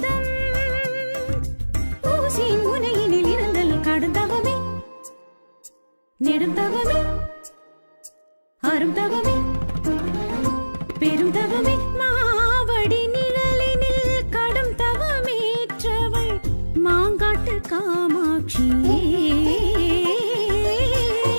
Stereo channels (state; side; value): inverted; both; correlation -1.00